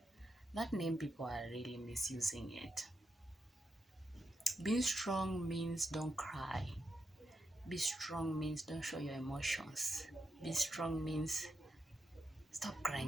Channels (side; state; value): both; normal; correlation 0.85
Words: that name, people are really misusing it. Being strong means don't cry. Be strong means don't show your emotions. Be strong means stop